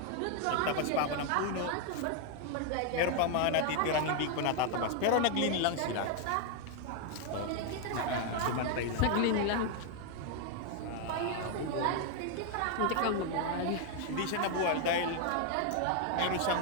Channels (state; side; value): different; both; correlation 0.00